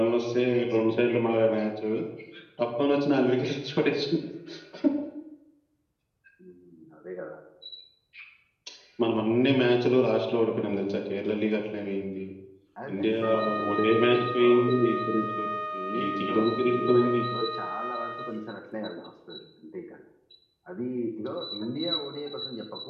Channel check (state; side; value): identical; both; correlation 1.00